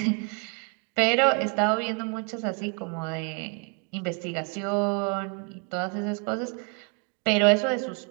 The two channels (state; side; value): quieter; left; 36.9 dB